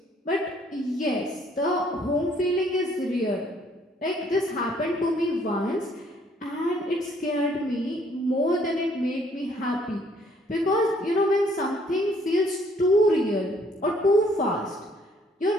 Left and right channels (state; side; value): normal; both; correlation 0.64